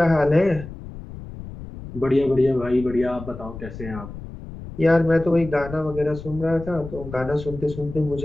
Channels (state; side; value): noise; left; rumble, 12 dB below the sound